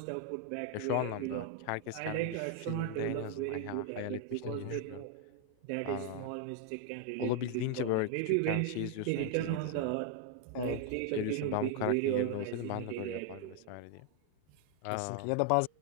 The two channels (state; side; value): different; both; correlation 0.00